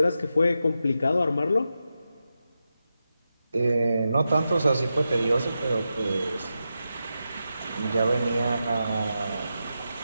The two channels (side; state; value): both; inverted; correlation -0.89